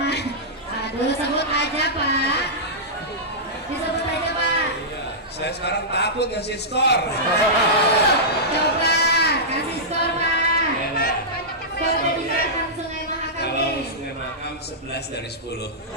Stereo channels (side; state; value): both; normal; correlation -0.13